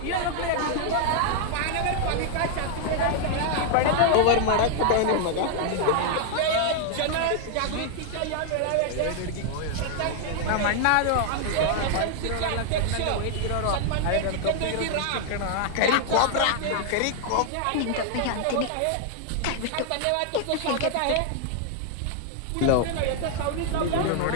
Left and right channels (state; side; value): different; both; correlation 0.00